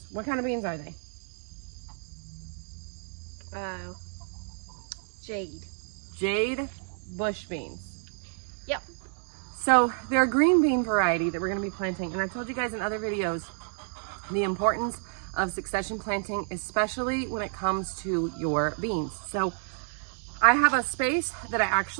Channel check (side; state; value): left; silent; 58 dB below the other